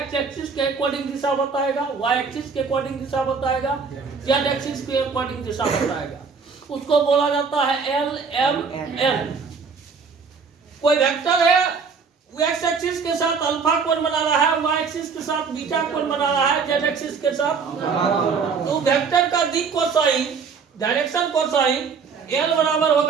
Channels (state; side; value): quieter; left; 5.4 dB